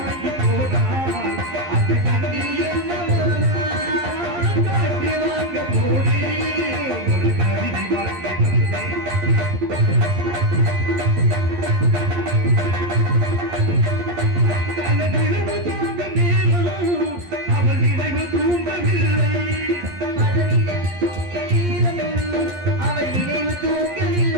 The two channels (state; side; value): late; left; 11 ms